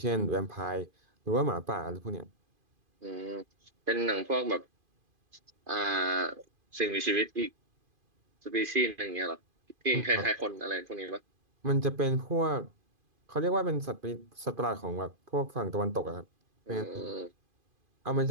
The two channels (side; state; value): left; late; 2.5 ms